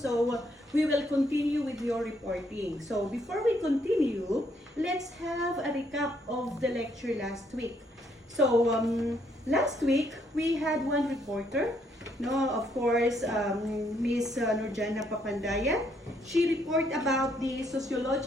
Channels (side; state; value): both; normal; correlation 0.71